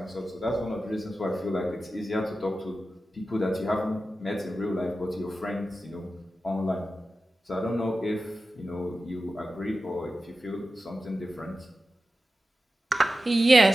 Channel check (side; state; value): both; normal; correlation 0.93